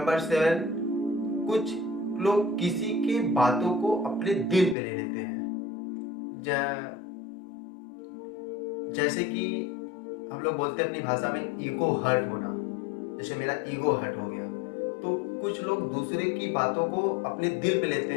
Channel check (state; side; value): drops out; right; at 4.8 s